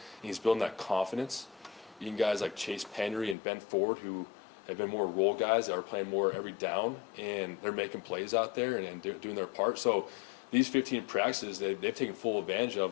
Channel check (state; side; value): drops out; right; at 3.4 s